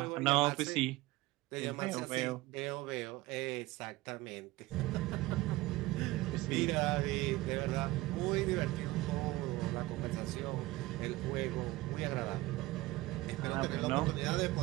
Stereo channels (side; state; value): left; quieter; 19.0 dB